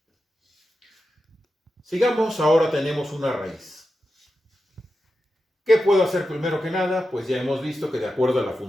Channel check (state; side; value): normal; both; correlation 0.90